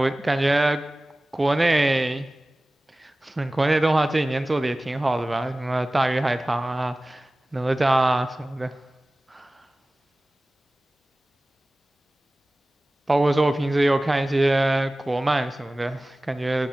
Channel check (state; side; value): normal; both; correlation 0.98